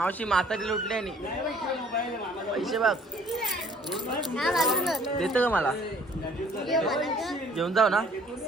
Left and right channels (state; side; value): normal; both; correlation 0.57